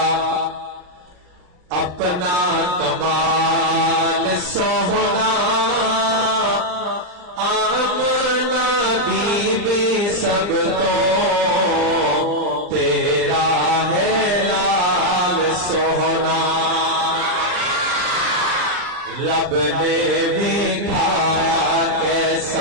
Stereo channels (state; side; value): late; left; 39 ms